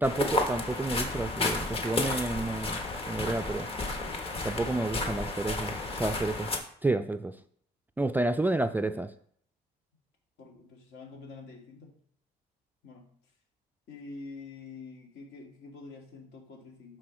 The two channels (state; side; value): normal; both; correlation 0.66